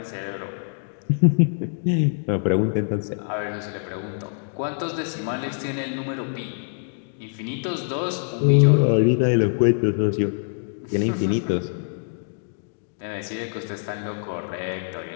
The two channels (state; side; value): silent; right; digital silence